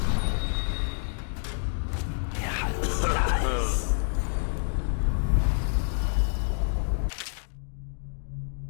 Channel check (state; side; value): silent; right; digital silence